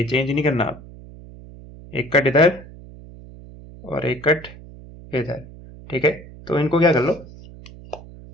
चेंज नहीं करना आप। एक कट इधर और एक कट इधर। ठीक है, तो इनको क्या कर लो?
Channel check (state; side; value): noise; right; hum, 18 dB below the sound